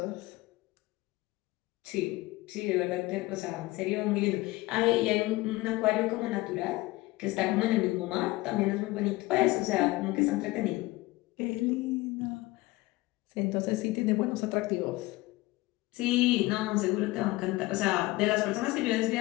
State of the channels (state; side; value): quieter; right; 20.2 dB